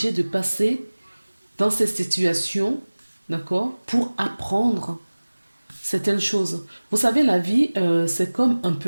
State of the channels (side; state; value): both; inverted; correlation -1.00